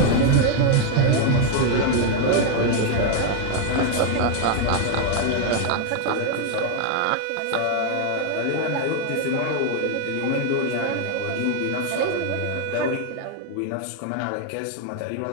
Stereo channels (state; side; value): different; both; correlation 0.00